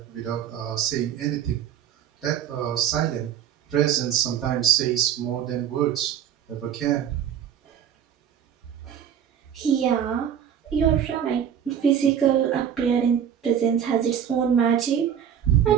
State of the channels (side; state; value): left; quieter; 9.0 dB